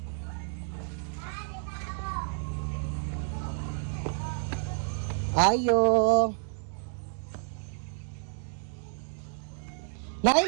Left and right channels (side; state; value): left; silent; digital silence